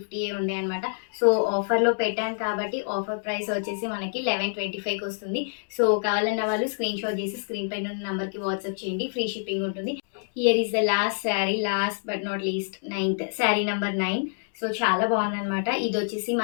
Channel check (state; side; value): silent; right; digital silence